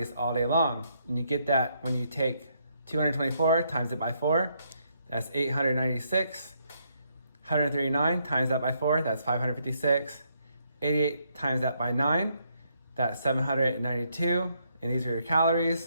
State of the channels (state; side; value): inverted; both; correlation -0.74